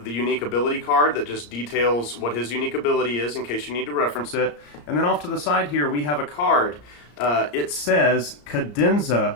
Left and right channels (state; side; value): late; right; 34 ms